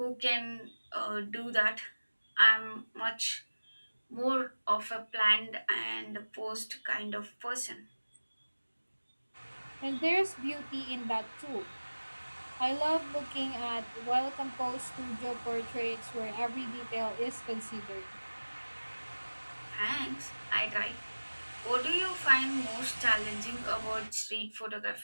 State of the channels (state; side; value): inverted; both; correlation -1.00